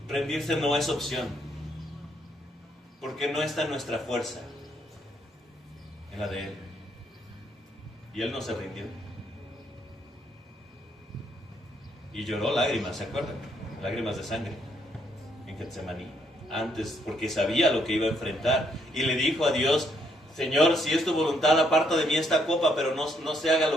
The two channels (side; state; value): both; normal; correlation 0.72